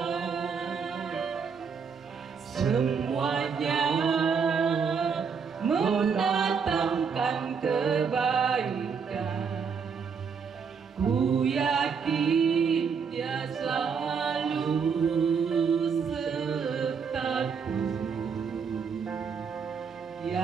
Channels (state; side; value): quieter; left; 6.1 dB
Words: semuanya mendatangkan kebaikan. Ku yakin Dia selalu sertaku,